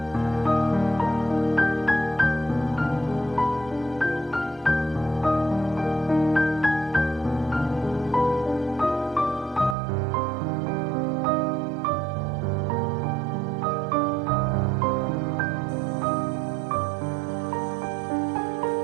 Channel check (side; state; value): left; drops out; at 9.8 s